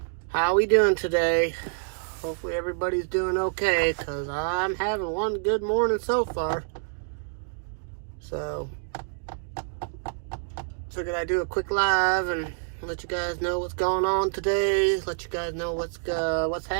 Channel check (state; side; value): silent; left; digital silence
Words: How we doing today? Hopefully everybody's doing okay, because I'm having one good morning so far. So figured I'd do a quick live and let you guys know what's going on today. Let you guys know what's